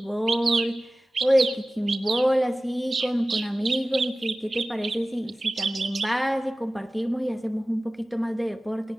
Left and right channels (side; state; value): both; normal; correlation 0.97